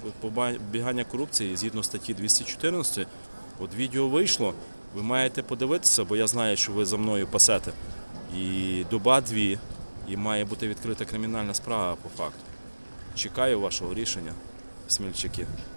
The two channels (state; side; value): inverted; both; correlation -1.00